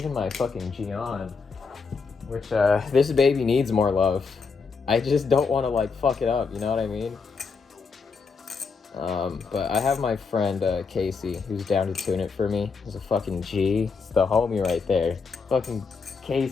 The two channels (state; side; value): quieter; right; 5.0 dB